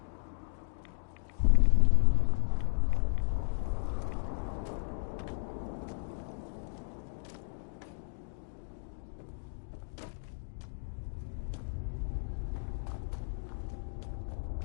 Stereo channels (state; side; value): silent; right; digital silence